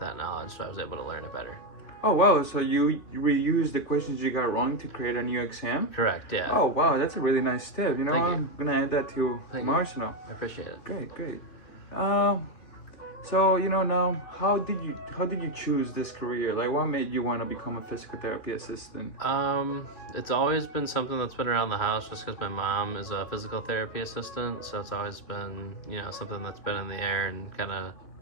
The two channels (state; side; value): late; right; 3.1 ms